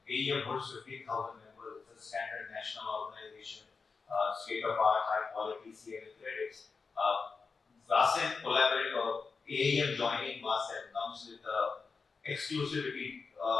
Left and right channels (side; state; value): right; quieter; 4.8 dB